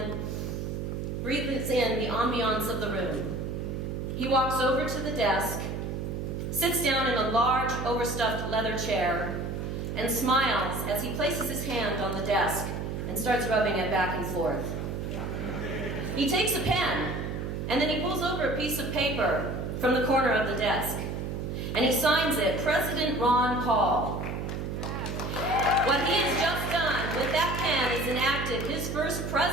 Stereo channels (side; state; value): right; noise; hum, 4 dB below the sound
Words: breathes in the ambiance of the room. He walks over to the desk, sits down in a large, overstuffed leather chair, and smiles as he places his hand on the desk and starts rubbing it back and forth. He takes a pen, and then he pulls over a piece of paper from the corner of the desk, and he signs it, President Ron Paul. What he has just done with that pen is enacted his first